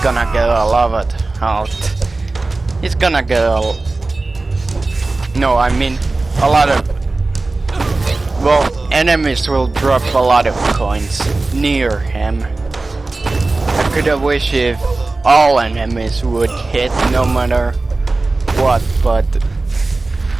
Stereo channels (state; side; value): quieter; left; 3.3 dB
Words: get a lot of health. He's gonna get no, I mean, a lot of... Well, enemies will drop a lot of coins near him. I could have wished if all enemies would hit no matter what, but